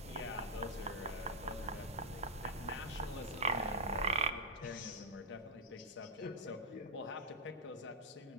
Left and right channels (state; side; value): normal; both; correlation -0.04